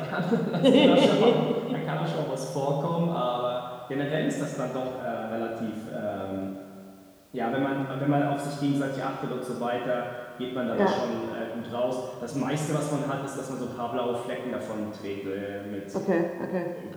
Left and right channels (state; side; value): identical; both; correlation 1.00